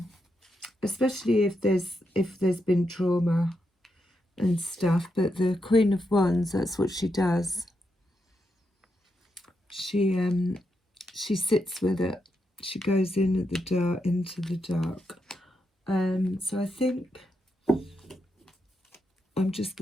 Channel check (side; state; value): both; normal; correlation 0.83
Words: especially if there's been trauma and stuff. But the Queen of Wands, that's what she does. She sits with it. She goes in at the dark, into the dark. So I think